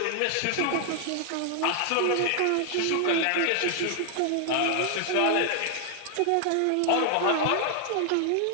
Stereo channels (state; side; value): different; both; correlation 0.00